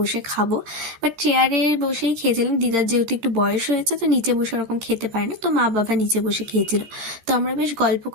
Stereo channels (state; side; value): late; left; 13 ms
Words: খাবো, বাট চেয়ারে বসেই খেয়েছিলাম। দিদার যেহেতু একটু বয়স হয়েছে, তো নিচে বসে ওরকম খেতে পারে না, তো মা বাবা নিচে বসে খেয়েছিল। তো আমরা বেশ গল্প